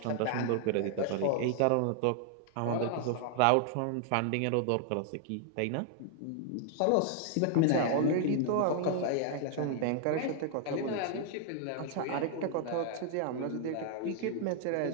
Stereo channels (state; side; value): different; both; correlation 0.00